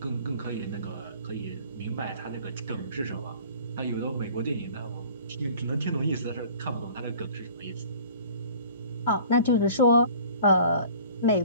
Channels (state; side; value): inverted; both; correlation -0.48